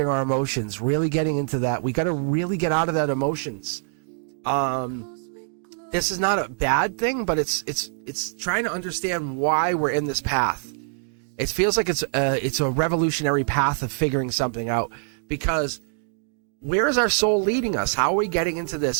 our emotions, really getting into that. We got to really get out of that emotions. This is not a bad thing, but it's trying to understand why we're in this path. It feels like it's a revolutionary path of figuring something out, because where is our soul leading us? How are we getting into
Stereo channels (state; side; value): silent; left; digital silence